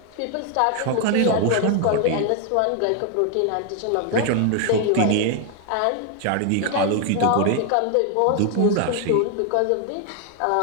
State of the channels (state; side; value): different; both; correlation 0.00